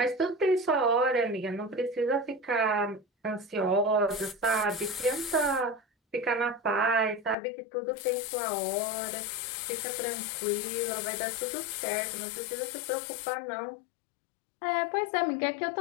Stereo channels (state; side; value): drops out; right; at 7.4 s